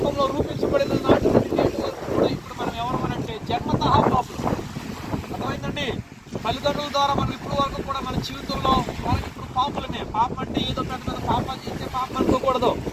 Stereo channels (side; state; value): both; identical; correlation 1.00